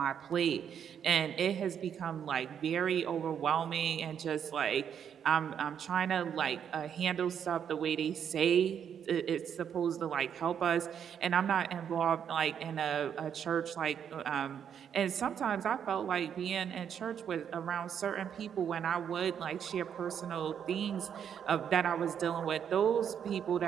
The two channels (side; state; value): left; quieter; 8.3 dB